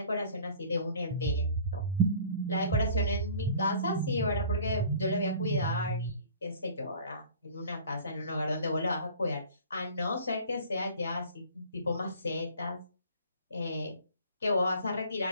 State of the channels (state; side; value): inverted; both; correlation -0.48